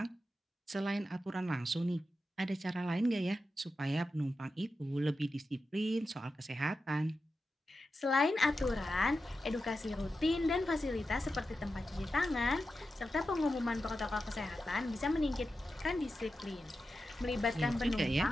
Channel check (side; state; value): both; normal; correlation 0.91